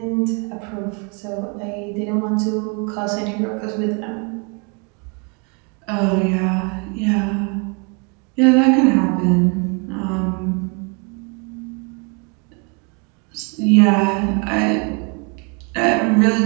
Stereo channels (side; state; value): left; quieter; 33.8 dB